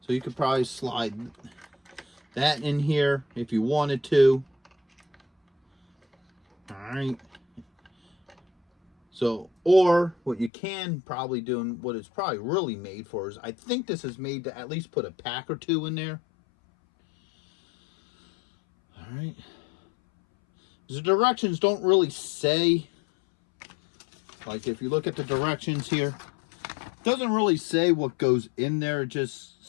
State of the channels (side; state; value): right; drops out; at 10.5 s